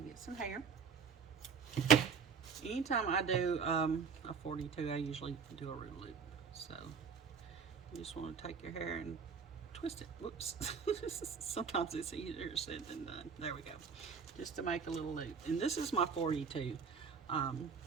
get some hair. Anytime I do a 42, I usually do a root loop. So you just want to take your hair and twist it. Whoops. Sometimes it's easier said than done. There we go. Just to make a little loop. And this is my 42.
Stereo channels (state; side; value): quieter; left; 6.0 dB